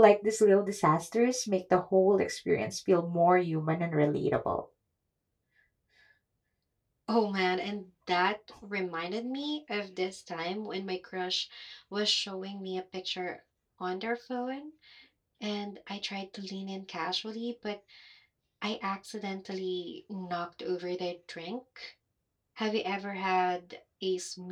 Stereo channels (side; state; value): both; identical; correlation 1.00